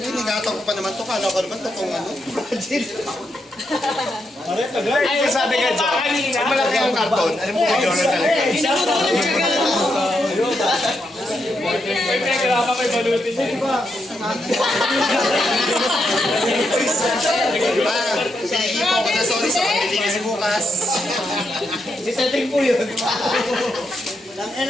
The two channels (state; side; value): normal; both; correlation 0.81